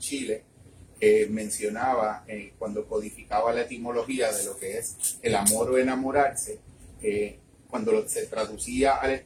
mencionaba cuando codificaba la etimología de lo que es el amor o enamorarse, cuando se traducía al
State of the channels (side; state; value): both; identical; correlation 1.00